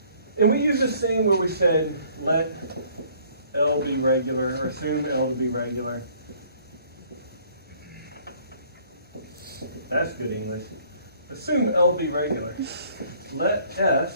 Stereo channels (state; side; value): inverted; both; correlation -0.59